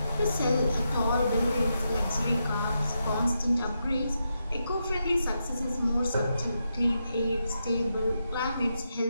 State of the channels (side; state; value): both; inverted; correlation -0.85